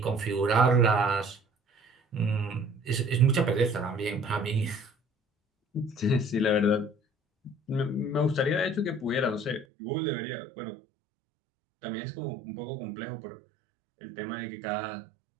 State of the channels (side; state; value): left; drops out; at 9.7 s